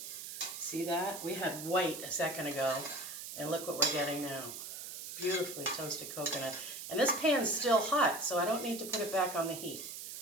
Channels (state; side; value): noise; right; hiss, 9 dB below the sound